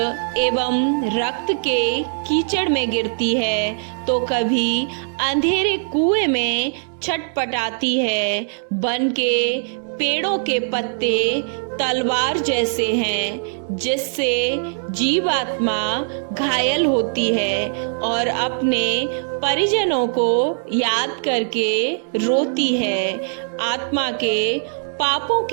एवं रक्त के कीचड़ में गिरती है तो कभी अंधेरे कुएं में छटपटाती है। वन के पेड़ों के पत्ते तलवार जैसे हैं जिससे जीवात्मा घायल होती है और अपने परिजनों को याद करके रोती है। आत्मा के पापों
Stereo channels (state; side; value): silent; left; 65 dB below the other